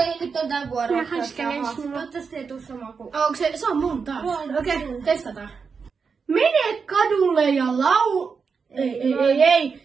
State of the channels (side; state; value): left; quieter; 5.5 dB